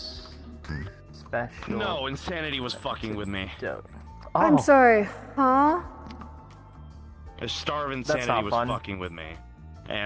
special. No, insanity was fucking with me. I'm sorry, huh? A starve That's insanity not was fun. fucking with me.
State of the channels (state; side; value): identical; both; correlation 1.00